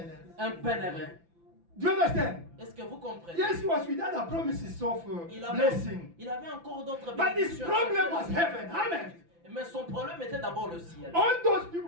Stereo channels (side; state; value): left; late; 5.9 ms